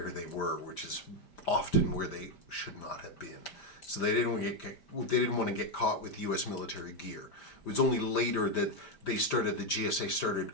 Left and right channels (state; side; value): late; right; 5.1 ms